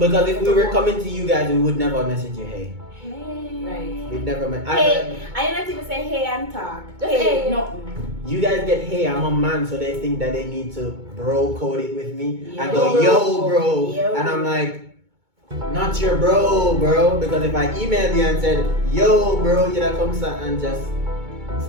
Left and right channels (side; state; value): left; late; 2.2 ms